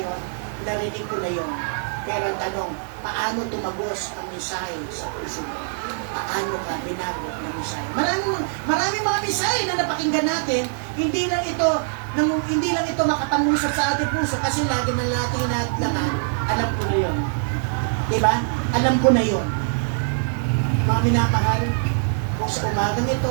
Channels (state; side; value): silent; left; 63 dB below the other